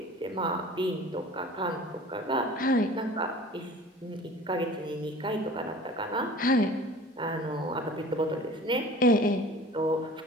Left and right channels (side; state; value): both; normal; correlation 0.43